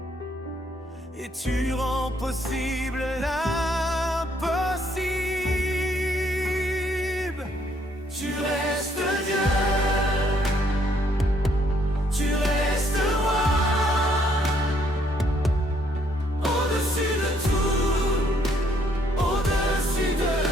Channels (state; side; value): normal; both; correlation 0.68